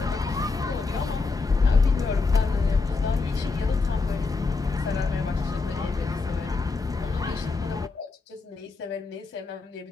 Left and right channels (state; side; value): quieter; right; 4.1 dB